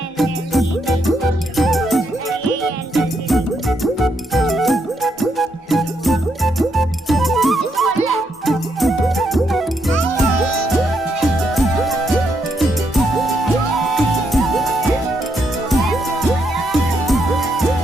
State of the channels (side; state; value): both; normal; correlation 0.78